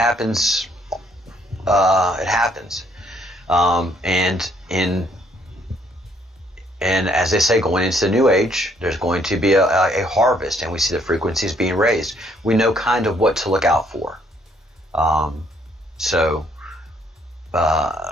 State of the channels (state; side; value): normal; both; correlation 0.67